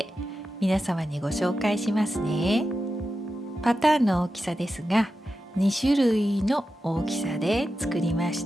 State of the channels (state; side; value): normal; both; correlation 0.91